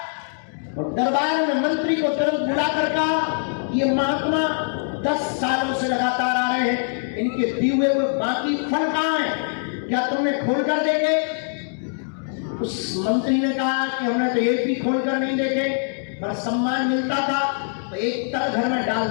और दरबार में मंत्री को तुरंत बुलाकर कहा, ये महात्मा 10 सालों से लगातार आ रहे हैं, इनके दिए हुए बाकी फल कहाँ हैं, क्या तुमने खोल कर देखे? उस मंत्री ने कहा कि हमने तो एक भी खोलकर नहीं देखे, पर सम्मान मिलता था तो एक तल घर में डाल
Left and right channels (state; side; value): silent; right; digital silence